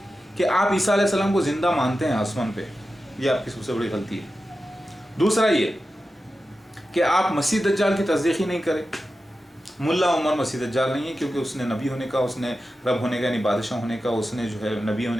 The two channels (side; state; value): both; normal; correlation 0.92